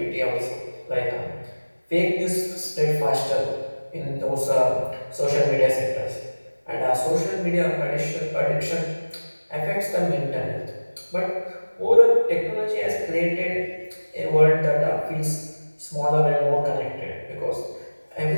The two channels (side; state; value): both; inverted; correlation -1.00